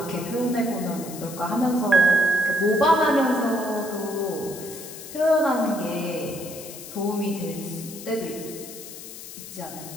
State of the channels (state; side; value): noise; left; hiss, 13 dB below the sound